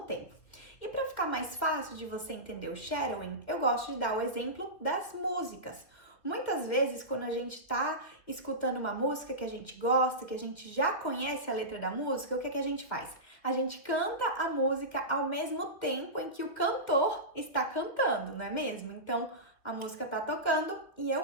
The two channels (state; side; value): late; right; 2.4 ms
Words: E para ficar mais fácil de você entender o shadowing, eu gosto de dar o exemplo das músicas. Muitas vezes, quando a gente está escutando uma música que a gente gosta, que a gente já conhece a letra da música, o que é que a gente faz? A gente canta a música ao mesmo tempo em que o cantor está cantando, não é mesmo? Então, a música está tocando e eu